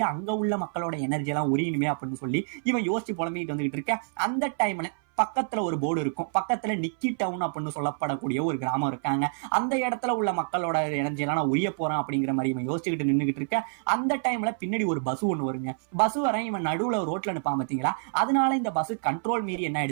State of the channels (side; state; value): left; silent; 60 dB below the other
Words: அங்க உள்ள மக்களோட எனர்ஜி எல்லாம் உரியணுமே அப்படின்னு சொல்லி இவன் யோசிச்சு புலம்பிட்டு வந்துகிட்டு இருக்க. அந்த டைம்ல பக்கத்துல ஒரு போர்டு இருக்கும். பக்கத்துல நிக்கி டவுன் அப்படின்னு சொல்லப்படக்கூடிய ஒரு கிராமம் இருக்காங்க. அந்த இடத்துல உள்ள மக்களோட எனர்ஜி எல்லாம் நான் உரிய போறேன் அப்படிங்கிற மாதிரி இவன் யோசிச்சுக்கிட்டு நின்றுகிட்டு இருக்க. அந்த டைம்ல பின்னாடி ஒரு பஸ் ஒண்ணு வருங்க. பஸ் வர இவன் நடுவுல ரோட்ல நிப்பான் பாத்தீங்களா, அதனால இந்த பஸ் கண்ட்ரோல் மீறி என்ன